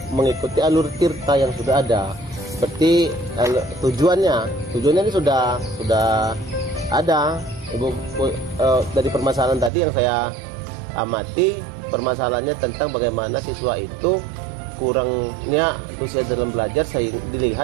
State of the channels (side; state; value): left; drops out; at 9.7 s